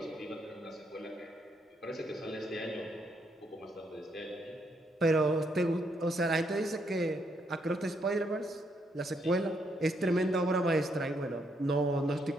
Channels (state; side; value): normal; both; correlation 0.75